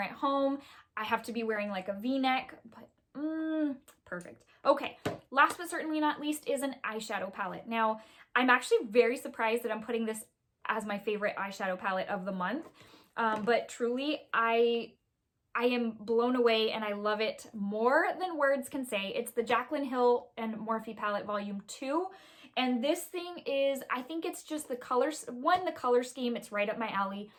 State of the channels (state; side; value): identical; both; correlation 1.00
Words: at home. I have to be wearing like a V-neck, but perfect. Okay, last but certainly not least is an eyeshadow palette. Now, I'm actually very surprised that I'm putting this as my favorite eyeshadow palette of the month. But truly, I am blown away and I love it more than words can say. It's the Jaclyn Hill and Morphe palette volume 2. And this thing is, I think it's just the colors. 1, the color scheme, it's right up my alley.